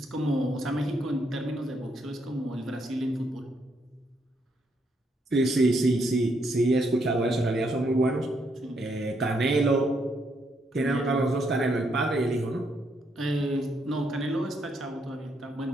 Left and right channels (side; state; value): both; normal; correlation 0.75